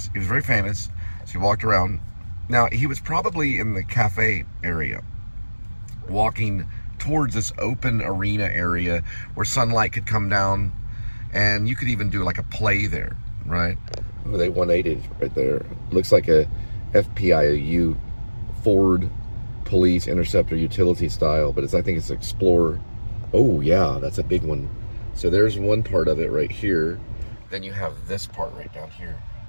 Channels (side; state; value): both; inverted; correlation -1.00